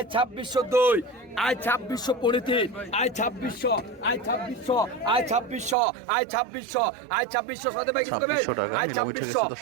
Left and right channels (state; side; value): drops out; left; at 5.8 s